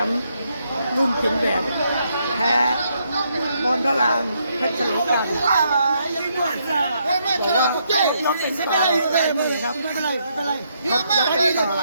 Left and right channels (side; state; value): both; inverted; correlation -0.76